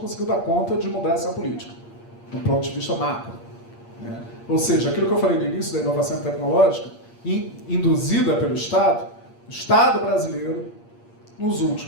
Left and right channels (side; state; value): right; late; 8.6 ms